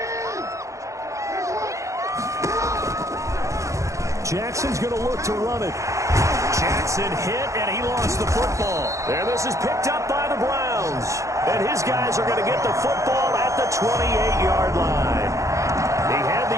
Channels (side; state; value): left; late; 0.15 ms